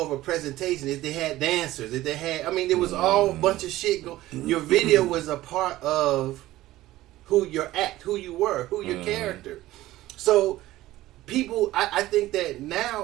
of a presentation. If they had dancers, if they had, there was all a bunch of shit go. Your video was a part of who your act, who you were, who your character. So people, I think that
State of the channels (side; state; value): left; quieter; 16.1 dB